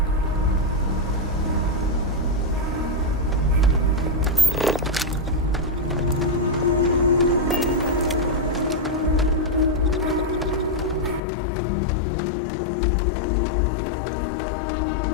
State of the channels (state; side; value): drops out; right; at 11.2 s